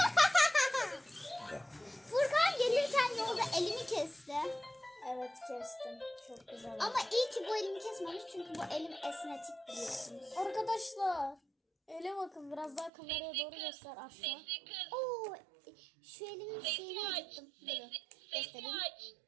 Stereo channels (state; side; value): drops out; left; at 12.9 s